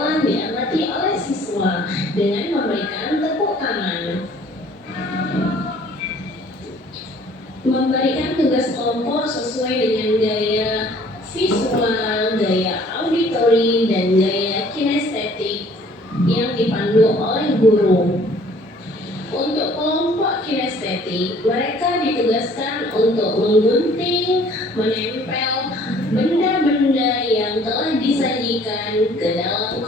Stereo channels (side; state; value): both; normal; correlation 0.56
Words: diamati oleh siswa dengan memberikan tepuk tangan. Memberikan tugas kelompok sesuai dengan gaya visual, gaya auditori, dan gaya kinestetik yang dipandu oleh guru. Untuk kelompok kinestetik, mereka ditugaskan untuk menggunting, menempel benda-benda yang telah disajikan ke dalam